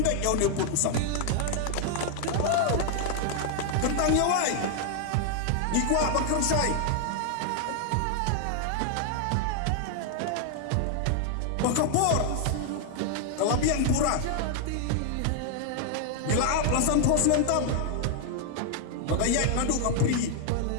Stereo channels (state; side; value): different; both; correlation 0.00